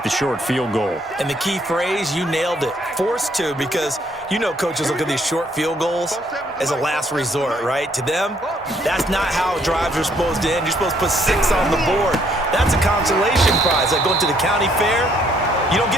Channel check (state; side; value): normal; both; correlation 0.67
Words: the short field goal. And the key phrase, you nailed it, forced to, because you know coaches look at these short field goals as a last resort, right? To them, that's not how drives are supposed to end. You're supposed to put 6 on the board. That's a consolation prize. Like going to the county fair, you don't